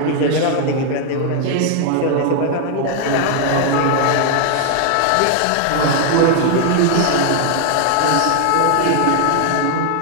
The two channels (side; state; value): both; different; correlation 0.00